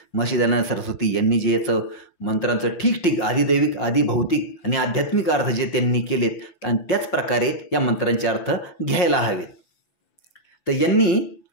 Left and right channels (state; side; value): late; right; 5.6 ms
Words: महर्षी दयानंद सरस्वती यांनी जे याचं मंत्रांचं ठीक आदिदैविक आदिभौतिक आणि आध्यात्मिक अर्थ जे त्यांनी केलेत आणि त्याच प्रकारे या मंत्रांचे अर्थ घ्यायला हवेत. तर यांनी